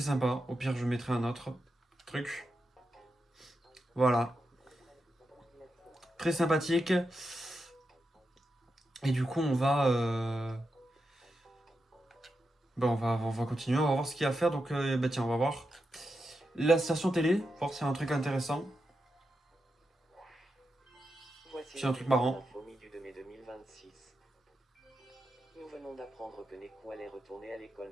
Au pire, je mettrai un autre truc. Voilà. Très sympathique. Et du coup, on va continuer, on va voir ce qu'il y a à faire. Donc, tiens, on va voir la station télé, voir s'il y a un truc intéressant. Voici C'est un truc marrant. l'info mi du 2 mai 2026. Nous venons d'apprendre que Nekou allait retourner à l'école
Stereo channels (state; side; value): normal; both; correlation 0.87